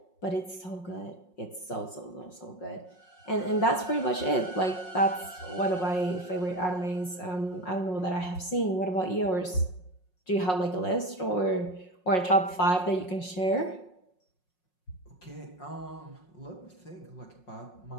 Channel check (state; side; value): late; right; 5.5 ms